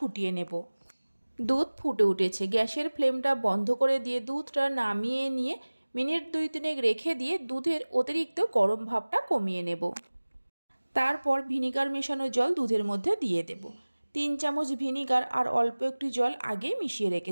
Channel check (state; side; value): inverted; both; correlation -1.00